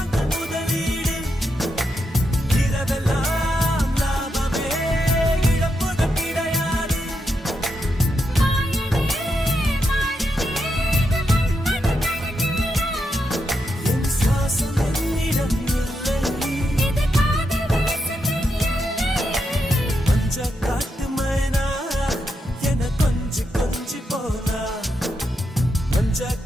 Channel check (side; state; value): both; normal; correlation 0.83